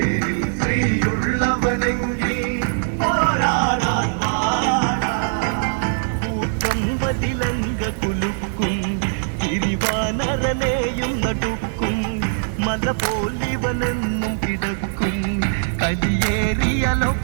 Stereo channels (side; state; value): left; silent; 63 dB below the other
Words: ശ്രീയുള്ളവനെങ്കിൽ പോരാടാൻ വാടാ. കൂട്ടം വതിലങ്ക കുലുക്കും തിരിവാനരനെയും നടുക്കും. മല പോലിവനെന്നും കിടക്കും